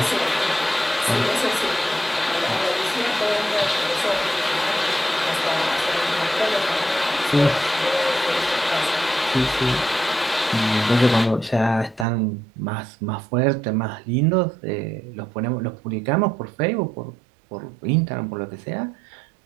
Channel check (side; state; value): left; drops out; at 12.1 s